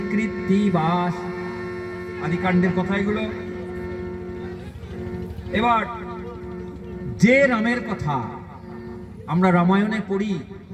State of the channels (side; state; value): both; identical; correlation 1.00